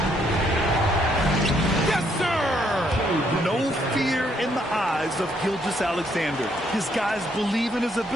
Yes, sir! No fear in the eyes of Gilgeous-Alexander. His guys believe in his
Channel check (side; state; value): both; normal; correlation 0.71